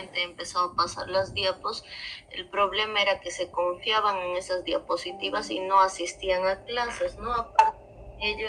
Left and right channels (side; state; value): both; identical; correlation 1.00